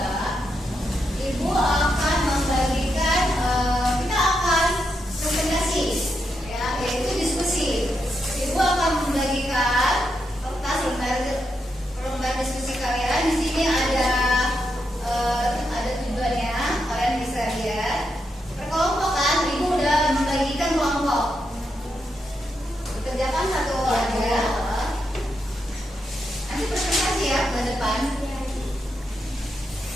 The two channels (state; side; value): normal; both; correlation 0.83